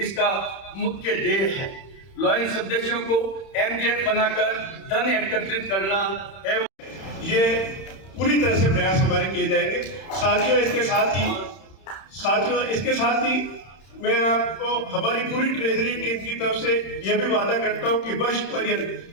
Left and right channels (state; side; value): late; right; 31 ms